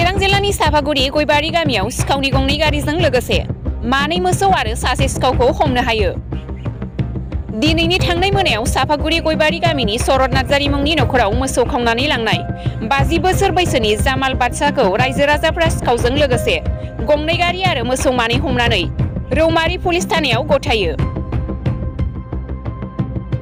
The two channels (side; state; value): both; identical; correlation 1.00